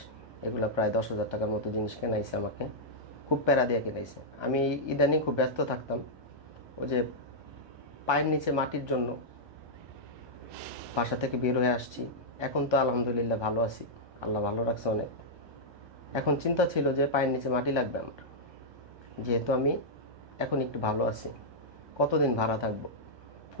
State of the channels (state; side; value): late; left; 1.2 ms